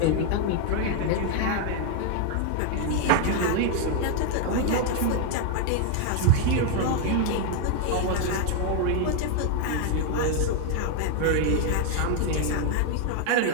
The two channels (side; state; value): both; different; correlation 0.01